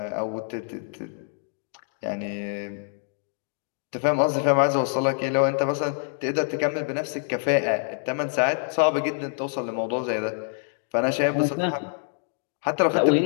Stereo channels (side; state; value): right; silent; digital silence